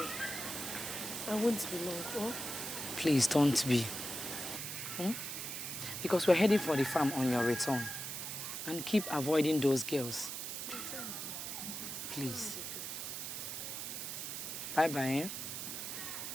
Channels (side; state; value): right; noise; hiss, 5 dB below the sound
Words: I won't be long, oh? please don't be. Because we're heading for the farm on your return. And keep avoiding those girls. Please. Bye-bye, eh?